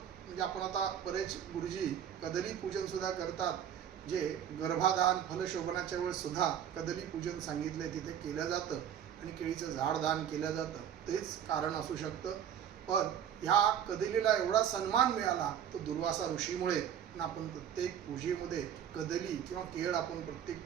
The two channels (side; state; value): left; quieter; 9.3 dB